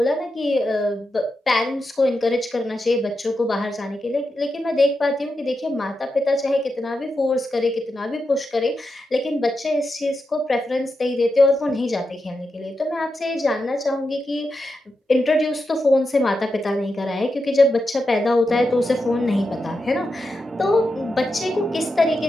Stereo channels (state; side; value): normal; both; correlation 0.88